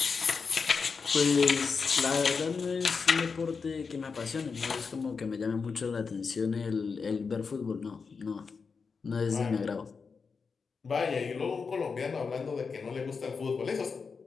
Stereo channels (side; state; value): right; quieter; 5.2 dB